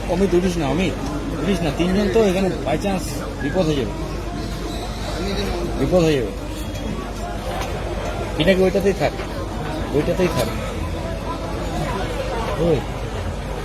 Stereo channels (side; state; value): both; identical; correlation 1.00